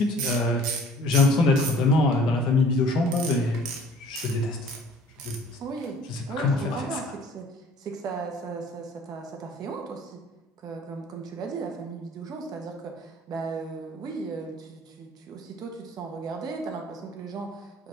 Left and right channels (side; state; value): both; normal; correlation 0.52